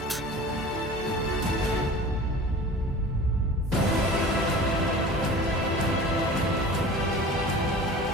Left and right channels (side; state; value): both; normal; correlation 0.40